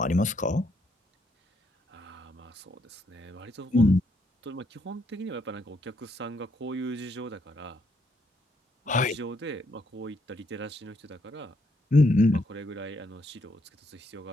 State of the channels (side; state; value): both; normal; correlation 0.74